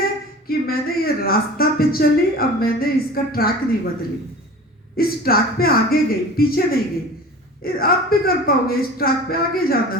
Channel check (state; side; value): normal; both; correlation 0.39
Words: कि मैंने ये रास्ता पे चली, अब मैंने इसका ट्रैक नहीं बदली, इस ट्रैक पे आगे गई, पीछे नहीं गई। आप भी कर पाओगे, इस ट्रैक पे आगे जाना